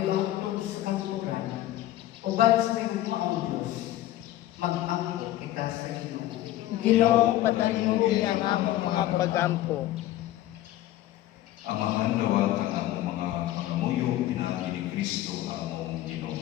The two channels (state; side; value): quieter; right; 14.4 dB